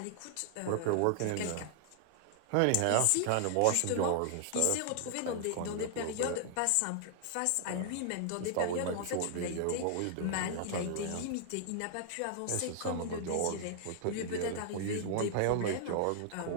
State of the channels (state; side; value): different; both; correlation 0.00